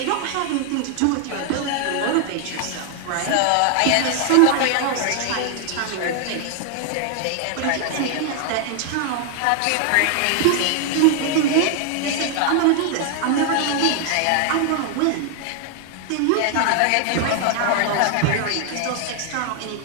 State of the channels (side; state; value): both; different; correlation 0.00